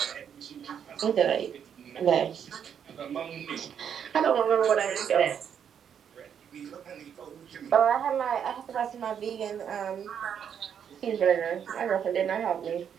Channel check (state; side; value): quieter; left; 8.2 dB